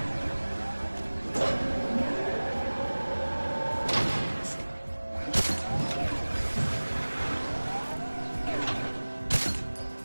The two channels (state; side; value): inverted; both; correlation -1.00